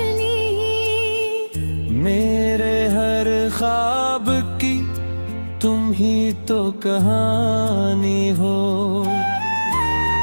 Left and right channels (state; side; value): inverted; both; correlation -1.00